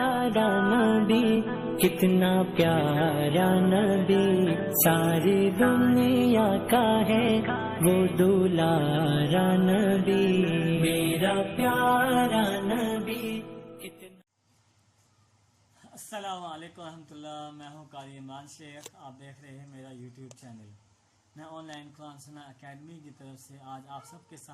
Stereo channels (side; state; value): both; identical; correlation 1.00